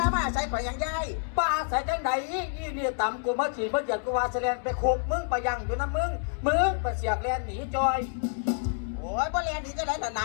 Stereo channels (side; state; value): right; silent; 59 dB below the other